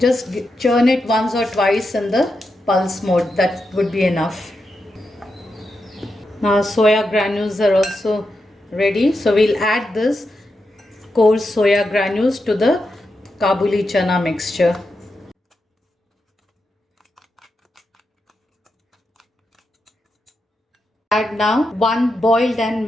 churn it once or twice in the pulse mode. That would be enough. Now soya granules are also ready. So we'll add this coarse soya granules to the Kabuli Chana mixture. Add now 1 boiled and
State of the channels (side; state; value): both; normal; correlation 0.87